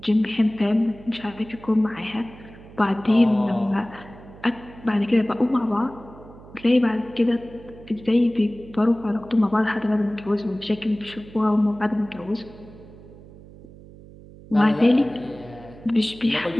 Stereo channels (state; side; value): noise; right; hum, 20 dB below the sound